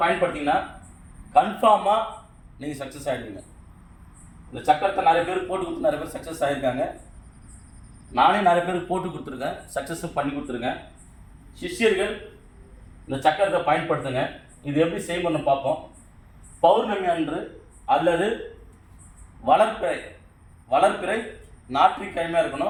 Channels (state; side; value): identical; both; correlation 1.00